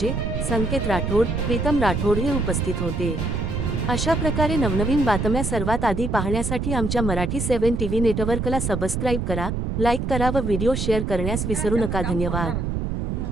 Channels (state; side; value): noise; right; rumble, 2 dB below the sound